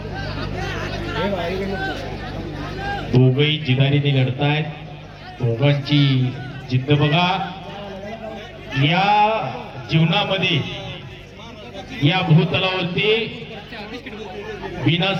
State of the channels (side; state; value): both; identical; correlation 1.00